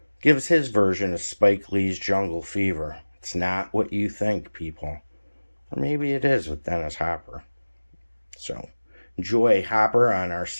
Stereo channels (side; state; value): both; inverted; correlation -1.00